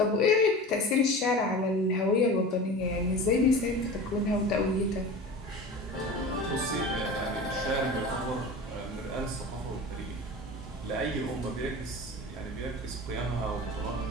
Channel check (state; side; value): normal; both; correlation 0.34